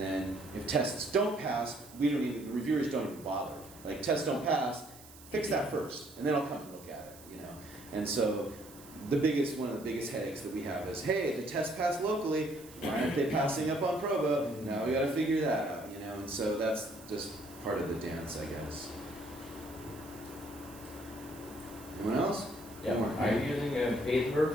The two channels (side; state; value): right; noise; hiss, 20 dB below the sound